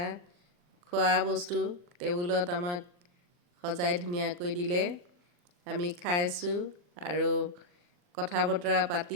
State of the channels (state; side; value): late; left; 40 ms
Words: খোৱা বস্তু টেবুলত আমাক সজাই ধুনীয়াকৈ দিলে। আমি খাইছোঁ আৰু কথা বতৰা